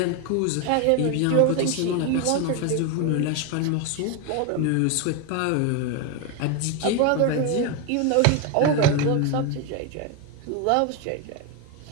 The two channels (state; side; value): different; both; correlation 0.02